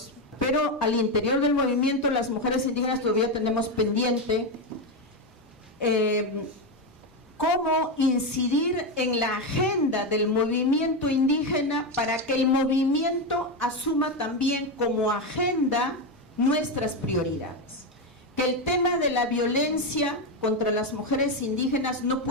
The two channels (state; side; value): normal; both; correlation 0.10